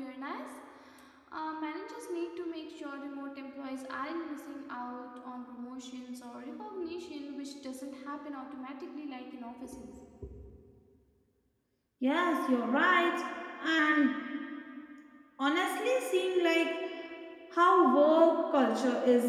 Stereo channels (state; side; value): identical; both; correlation 1.00